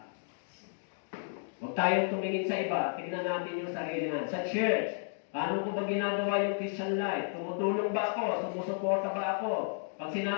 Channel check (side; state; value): right; silent; digital silence